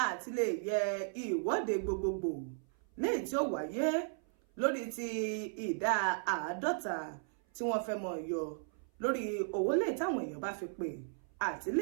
àti lè yẹ ìwọ́de gbogbogbò léyìí tí ó wáyé lórí ti ìdá 50 tí wọ́n fẹ́ mọ̀ yọ lórí owó lè táwọn èèyàn bá fi pè àti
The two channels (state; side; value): silent; left; 54 dB below the other